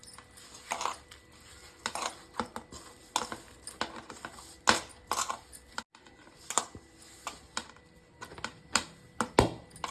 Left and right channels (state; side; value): identical; both; correlation 1.00